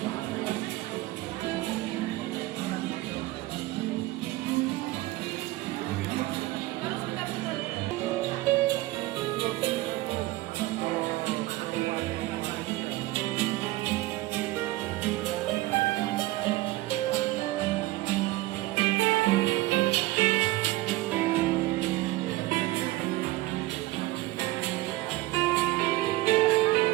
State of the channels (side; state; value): left; quieter; 18.6 dB